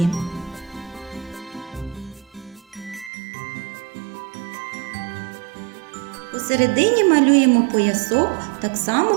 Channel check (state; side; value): drops out; left; at 3.1 s